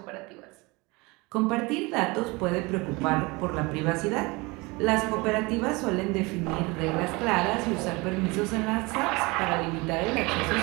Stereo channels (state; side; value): quieter; left; 25.0 dB